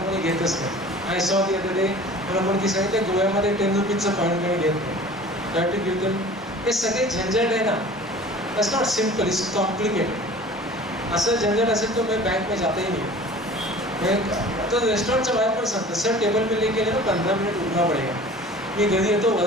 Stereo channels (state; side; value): normal; both; correlation 0.43